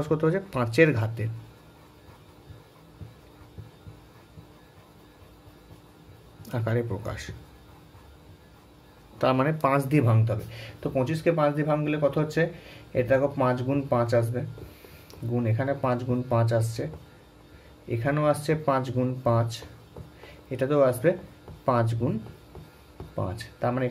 করতে হয়েছে, 5-এর ঘাতের আকারে প্রকাশ, তার মানে 5 দিয়ে ভাঙতে হবে। তো 25কে 5 দিয়ে ভাঙলে কত হচ্ছে, এটা দেখো 5 গুণ 5 আসবে, গুণ এখানে 5 গুণ 5 আসছে, এখানেও আসছে 5 গুণ 5, এটাতেও আসবে 5 গুণ 5, তার মানে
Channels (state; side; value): identical; both; correlation 1.00